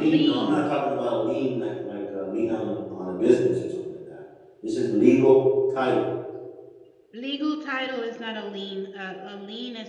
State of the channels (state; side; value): identical; both; correlation 1.00